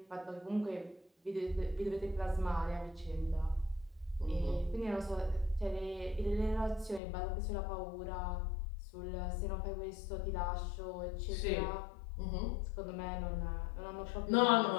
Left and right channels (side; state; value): right; drops out; at 7.0 s